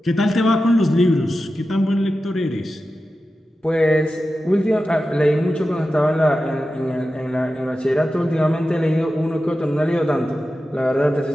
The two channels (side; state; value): both; normal; correlation 0.92